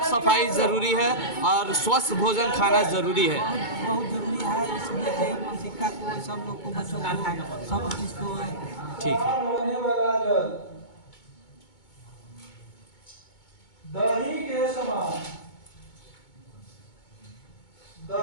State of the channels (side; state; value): right; late; 2.2 ms